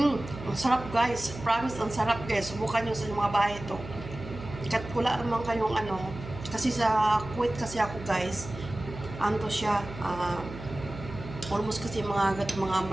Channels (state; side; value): noise; right; hum, 12 dB below the sound